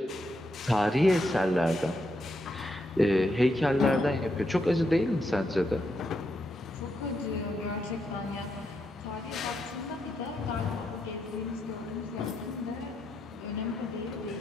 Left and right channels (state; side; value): normal; both; correlation 0.81